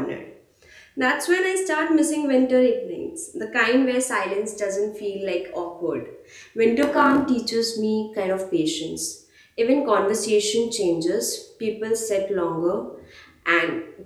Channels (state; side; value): identical; both; correlation 1.00